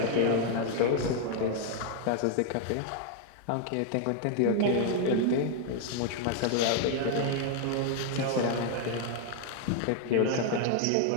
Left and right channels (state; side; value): different; both; correlation 0.00